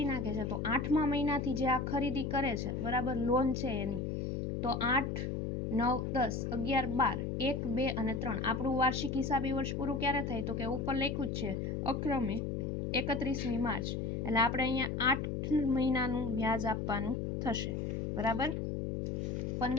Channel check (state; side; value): noise; left; hum, 2 dB below the sound